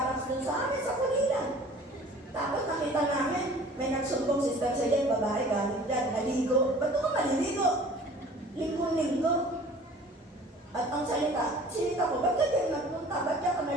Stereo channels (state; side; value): normal; both; correlation 0.48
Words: doon sa amin, sa Pulilan. Tapos nakita namin, may nagsumbong sister sa yan, babae galing dyan, naligo. Ba't ka maliligo? Linggo-linggo. At ang sinita ko, ba't ka diyan nagpunta? Ba't ka